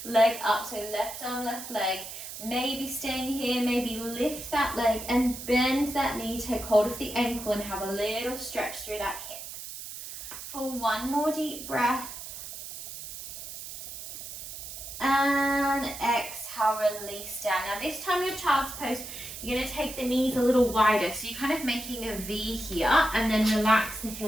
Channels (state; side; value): noise; right; hiss, 10 dB below the sound